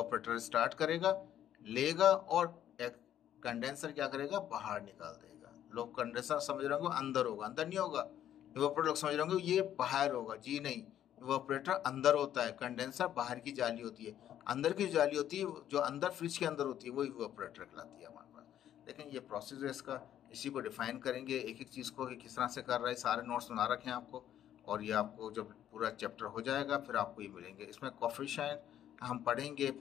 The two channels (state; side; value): quieter; right; 10.9 dB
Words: स्टार्ट करेगा, लेगा, और एक कंडेंसर क्या करेगा, बाहर निकाल देगा। लोग कंडेंसर समझ रहे होंगे अंदर होगा, अंदर नहीं होगा। इवोपरेटर लोग समझ रहे होंगे ये बाहर होगा, जी नहीं, इवोपरेटर अंदर होता है, कंडेंसर बाहर की जाली होती है। अंदर की जाली होती है, जो अंदर फ्रिज के अंदर होती है, वो इवोपरेटर कहलाती है हमारे पास। लेकिन ये प्रोसेस है इसका, इसी को डिफाइन करेंगे एक एक चीज़ को कि किस तरह से कर रहा है। सारे नोट्स बना रखे हैं आपको, और ये आपको जब पूरा चैप्टर हो जाएगा फिर आपको ये मिलेंगे। इसमें कोफिशिएंट हम पढ़ेंगे,